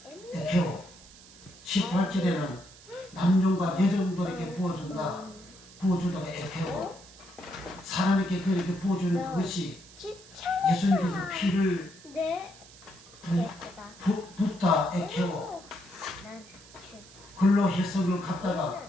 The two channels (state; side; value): noise; right; hiss, 21 dB below the sound